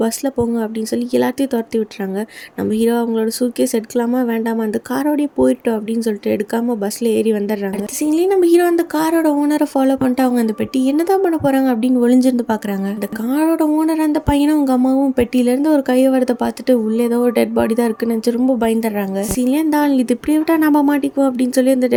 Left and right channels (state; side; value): identical; both; correlation 1.00